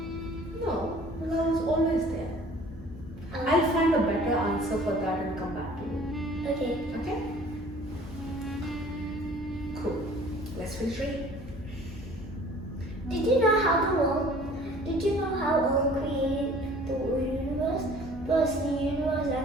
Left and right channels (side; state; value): both; normal; correlation 0.50